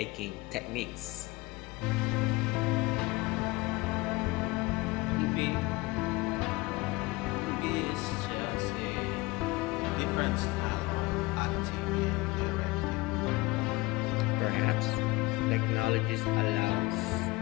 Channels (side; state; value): right; quieter; 22.3 dB